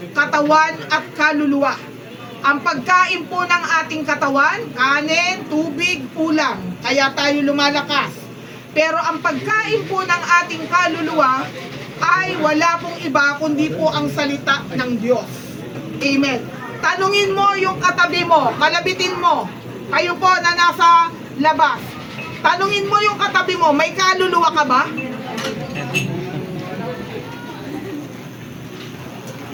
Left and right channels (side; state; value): both; identical; correlation 1.00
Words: katawan at kaluluwa. Ang pagkain po ng ating katawan, kanin, tubig, ulam. Kaya tayo lumalakas. Pero ang pagkain po ng ating kaluluwa ay wala pong iba kundi po ang salita ng Diyos. Amen. Tanungin mo yung katabi mo, kalabitin mo. Kayo po na nasa labas. Tanungin mo yung katabi mo, may kaluluwa ka ba?